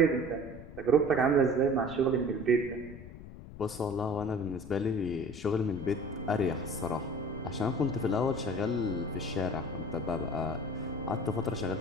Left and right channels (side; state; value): left; noise; rumble, 14 dB below the sound